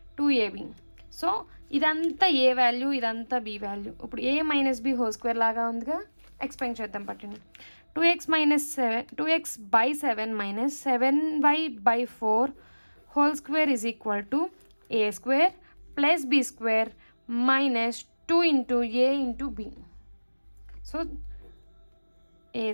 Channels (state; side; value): inverted; both; correlation -1.00